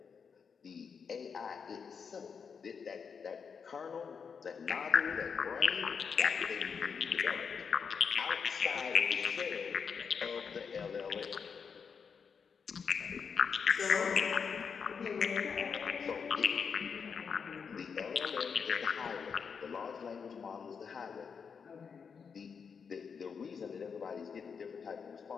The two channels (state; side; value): quieter; right; 6.2 dB